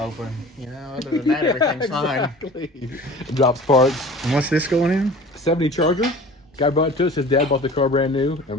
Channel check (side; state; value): both; normal; correlation 0.42